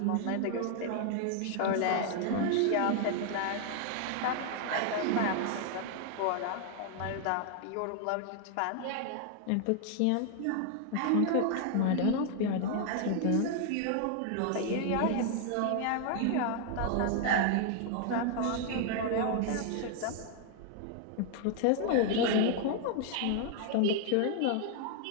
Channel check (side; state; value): both; different; correlation 0.00